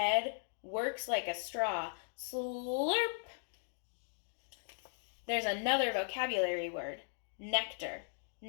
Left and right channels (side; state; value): right; silent; digital silence